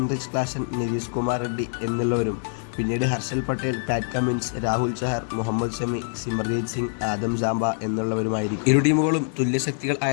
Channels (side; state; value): right; silent; 62 dB below the other